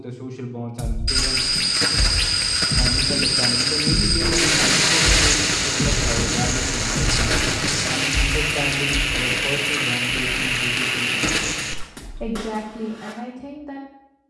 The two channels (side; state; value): both; identical; correlation 1.00